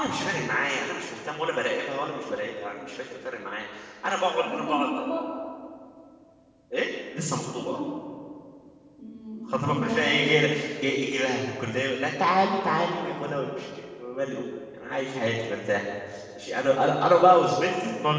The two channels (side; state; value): both; identical; correlation 1.00